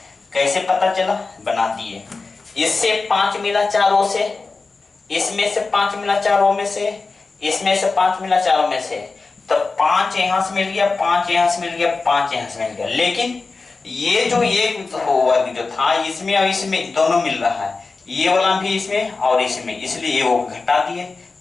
कैसे पता चला, बना दिए। इससे 5 मिला चारों से, इसमें से 5 मिला चारों में से, इसमें से 5 मिला चारों में से, तो 5 यहां से मिल गया, 5 यहां से मिल गया, 5 यहां से मिल गया। लेकिन ये जो वर्ग जो था इसमें और इसमें दोनों मिल रहा है, ये वाला भी इसमें और इसमें, इसलिए ये वो घटा दिए।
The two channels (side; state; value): right; quieter; 4.0 dB